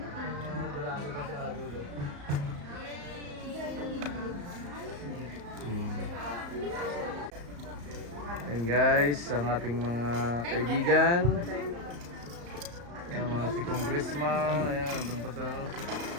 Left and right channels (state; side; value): late; left; 34 ms